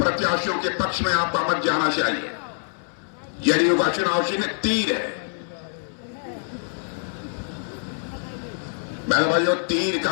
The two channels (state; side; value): silent; right; 61 dB below the other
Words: के पक्ष में आपका मत जाना चाहिए। जेडीयू का चुनाव चिन्ह तीर है। बहनों भाइयों, तीर का